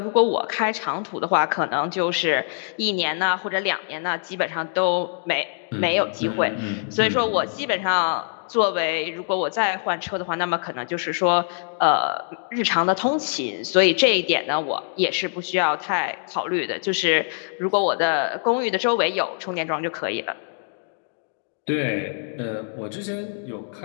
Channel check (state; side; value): silent; right; digital silence